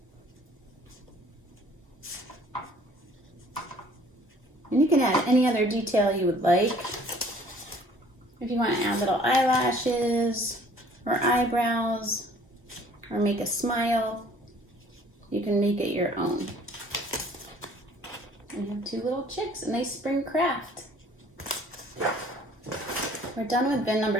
And you can add any other detail you would like. If you want to add little eyelashes or eyebrows or make a smile, you can make it your own. And you have two little chicks, a nice spring craft. We're done with bin number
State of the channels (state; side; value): normal; both; correlation 0.55